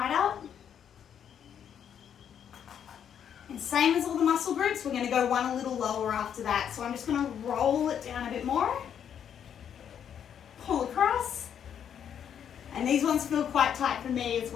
up. And same as all the muscle groups, we're going to go one a little lower after that. So I'm just going to roll it down a bit more, pull across, and these ones feel quite tight for me as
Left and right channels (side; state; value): right; quieter; 8.7 dB